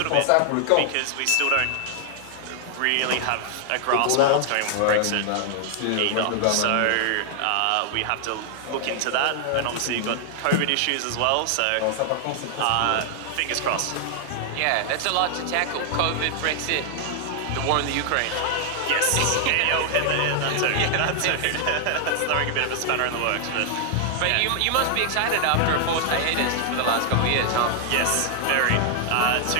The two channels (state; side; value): different; both; correlation 0.00